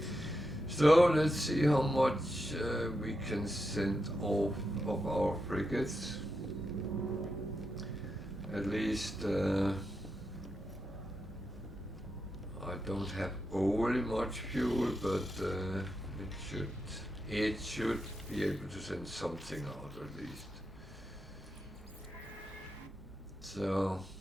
So let's see how much we can send off of our frigates. At least I don't have overly much fuel, but it should be able to send something out at least. So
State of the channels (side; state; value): both; normal; correlation 0.86